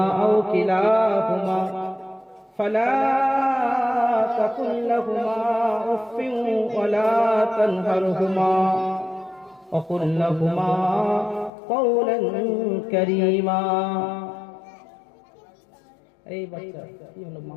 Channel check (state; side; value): drops out; right; at 11.5 s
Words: আও কিলাহুমা ফালা تقل لهما أف ولا تنهرهما وقل لهما قولا كريما. এই বাচ্চা কি হলো মা?